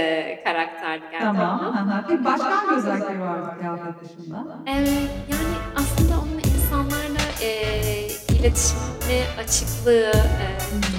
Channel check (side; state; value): both; identical; correlation 1.00